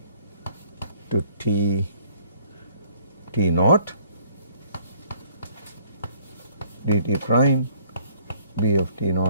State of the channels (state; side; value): inverted; both; correlation -0.61